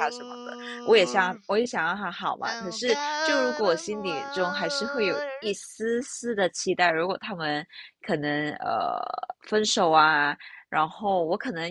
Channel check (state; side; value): identical; both; correlation 1.00